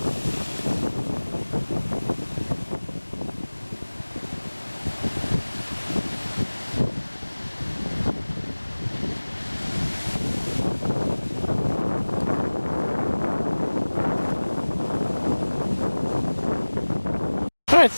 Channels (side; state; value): both; inverted; correlation -1.00